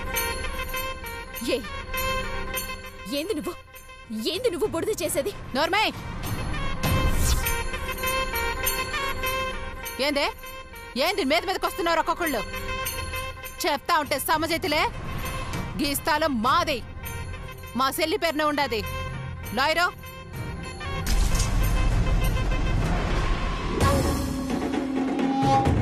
ఏంది నువ్వు బుడిద చేసేది? నోర్మే, ఏంది మీద మీదకి వస్తున్నారు ఒక్కొక్కళ్ళు? చెప్తా ఉంటే సమజైతులే. గీస్తాలో మాది, మా సెల్లి పేరునే ఉండాది. లాయరు,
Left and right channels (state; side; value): identical; both; correlation 1.00